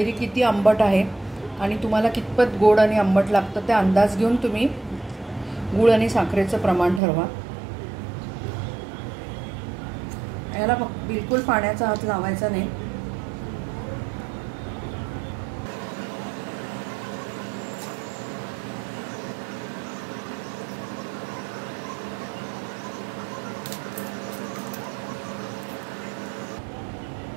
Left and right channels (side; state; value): left; drops out; at 7.0 s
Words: किती आंबट आहे आणि तुम्हाला कितपत गोड आणि आंबट लागतं ते अंदाज घेऊन तुम्ही गूळ आणि साखरेचं प्रमाण ठरवा. याला बिलकुल पाण्याचा हात लावायचा नाही.